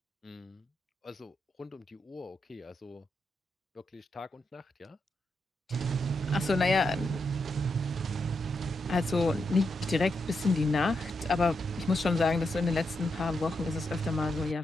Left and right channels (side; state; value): both; normal; correlation 0.84